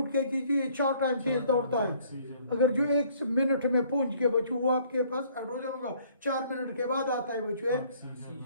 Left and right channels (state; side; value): inverted; both; correlation -0.60